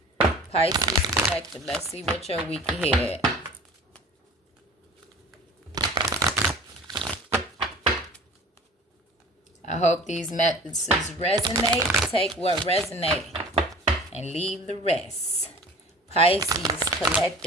Pisces Collective. Let's see what your week ahead. I hope these messages resonate. Take what resonates and leave the rest. Pisces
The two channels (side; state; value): both; normal; correlation 0.43